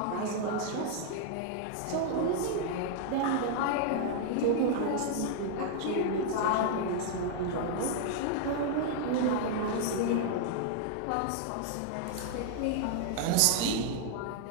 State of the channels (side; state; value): both; different; correlation -0.01